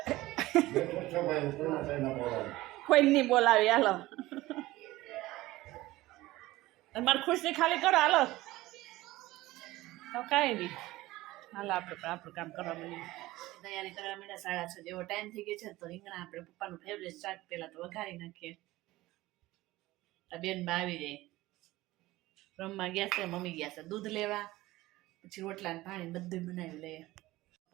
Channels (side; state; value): left; quieter; 18.0 dB